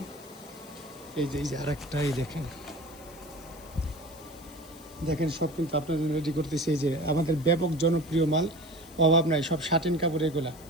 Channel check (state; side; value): noise; left; hiss, 21 dB below the sound